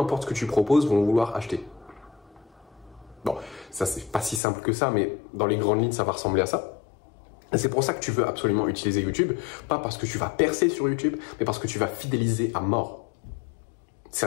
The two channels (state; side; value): drops out; right; at 4.4 s